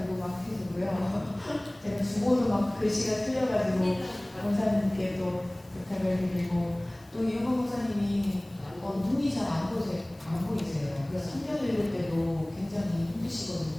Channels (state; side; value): noise; left; hiss, 29 dB below the sound